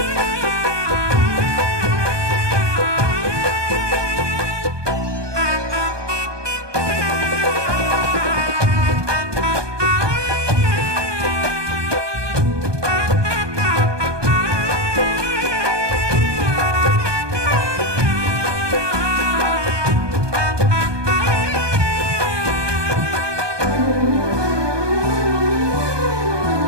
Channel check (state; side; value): late; left; 1.2 ms